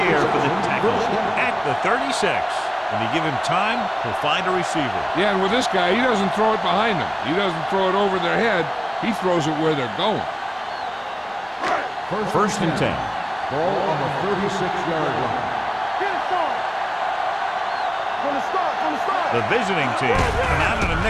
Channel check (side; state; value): both; identical; correlation 1.00